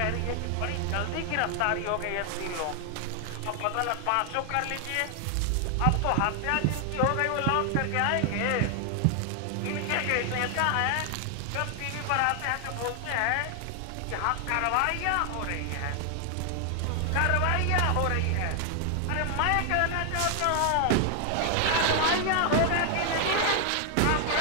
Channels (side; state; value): both; different; correlation 0.00